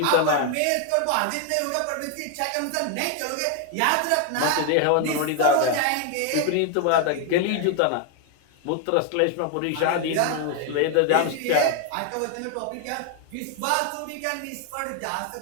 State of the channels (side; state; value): both; different; correlation 0.01